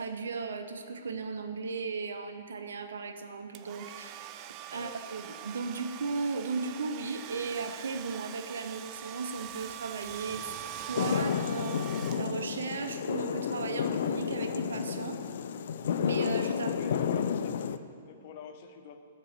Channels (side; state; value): both; inverted; correlation -0.59